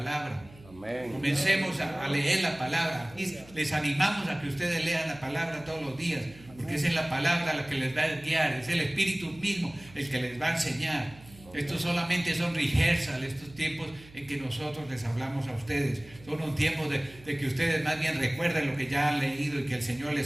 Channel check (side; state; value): right; noise; hum, 22 dB below the sound